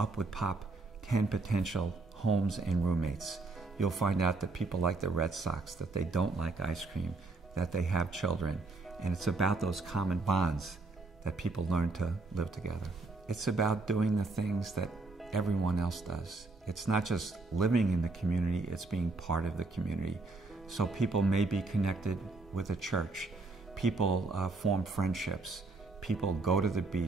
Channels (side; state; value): left; quieter; 3.4 dB